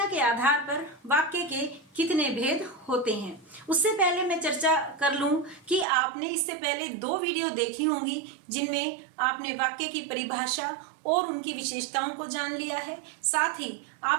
के आधार पर वाक्य के कितने भेद होते हैं। उससे पहले मैं चर्चा कर लूं कि आपने इससे पहले 2 वीडियो देखी होंगी जिनमें आपने वाक्य की परिभाषा और उनकी विशेषताओं को जान लिया है। साथ ही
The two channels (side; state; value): left; drops out; at 5.9 s